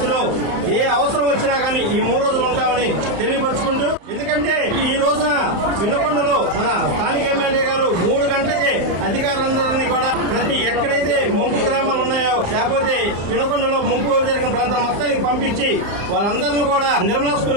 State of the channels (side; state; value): left; late; 34 ms